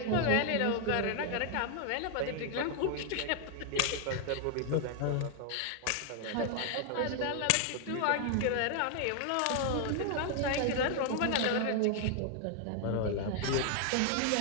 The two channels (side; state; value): both; different; correlation 0.00